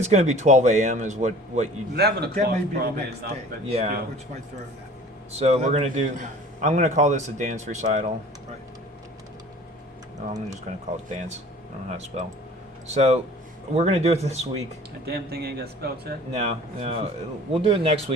going to be 12 a.m. is what you. 11 That o'clock may be the probably next enough, day. but Yeah. still. Which might throw that. So we're going to do. 11:59. I'm going to call this a dance recital. Right. No, I'm just going to call it dance. I don't know how to spell. So we're going to do it this week. That damn thing ain't got spell check? No, we'll do it next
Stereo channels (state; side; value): normal; both; correlation 0.46